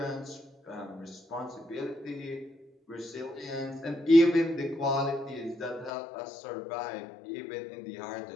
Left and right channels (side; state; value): right; drops out; at 5.9 s